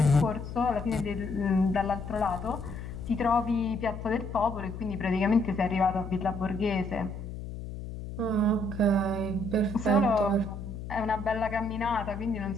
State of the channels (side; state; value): left; noise; hum, 9 dB below the sound